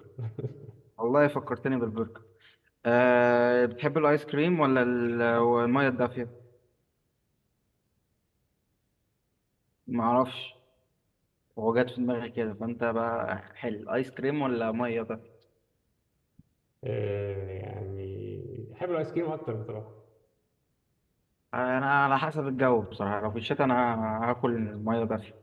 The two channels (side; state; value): both; identical; correlation 1.00